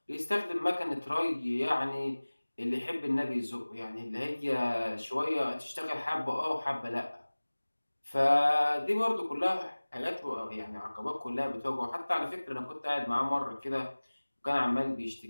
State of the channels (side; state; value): both; inverted; correlation -1.00